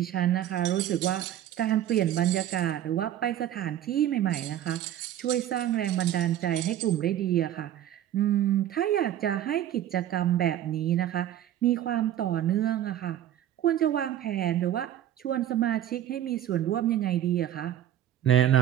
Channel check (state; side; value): quieter; left; 11.6 dB